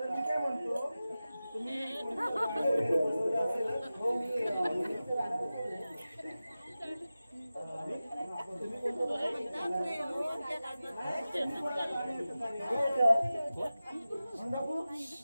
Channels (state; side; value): inverted; both; correlation -0.95